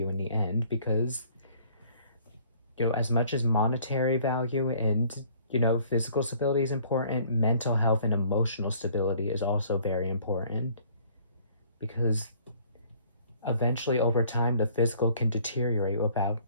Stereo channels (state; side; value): inverted; both; correlation -0.57